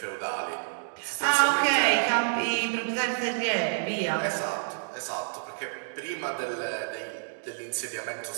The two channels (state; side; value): silent; left; digital silence